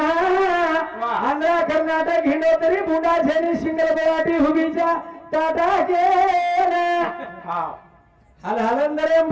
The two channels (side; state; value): both; identical; correlation 1.00